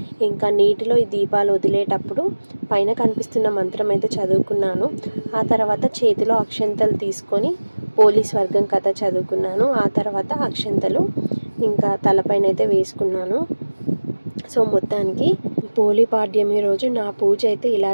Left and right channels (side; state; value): both; inverted; correlation -1.00